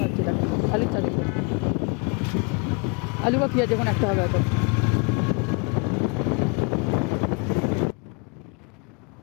হচ্ছে, এটা আলুর চাষ। আলু বা পেঁয়াজ যখন একটা হবে হয়তো।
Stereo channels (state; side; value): quieter; right; 33.1 dB